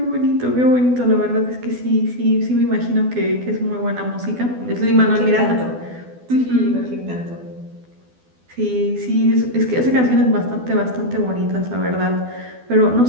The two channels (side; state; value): left; late; 12 ms